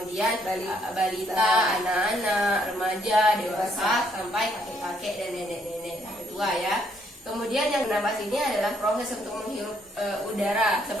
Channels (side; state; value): both; normal; correlation 0.70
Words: balita, anak-anak, remaja, dewasa, sampai kakek-kakek dan nenek-nenek sampai tua ya. Kemudian yang bernapas ini adalah proses untuk menghirup udara.